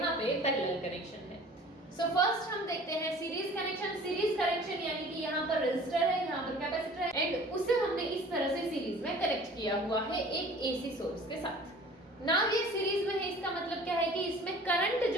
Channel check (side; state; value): both; normal; correlation 0.47